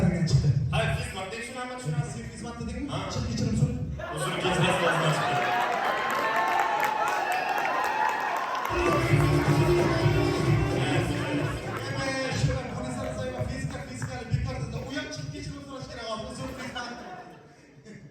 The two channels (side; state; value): both; identical; correlation 1.00